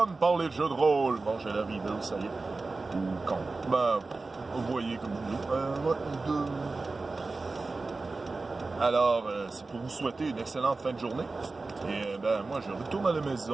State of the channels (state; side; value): quieter; left; 3.7 dB